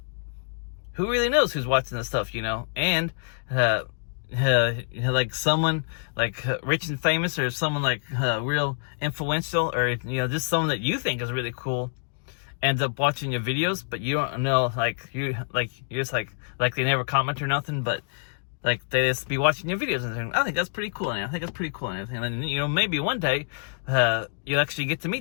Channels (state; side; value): silent; right; digital silence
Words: who really knows who's watching this stuff, you know? And, like someone like rich and famous, or someone like real influential, or, you know, just someone that you think is really cool ends up watching your videos, but you don't know, you're just like they never comment or nothing, but like they just be watching your videos and saying, I think that's pretty cool, and everything. And then, you know, maybe one day you'll actually get to